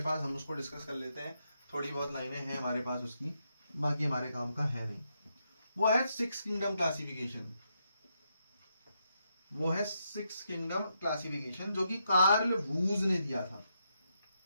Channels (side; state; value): both; inverted; correlation -0.81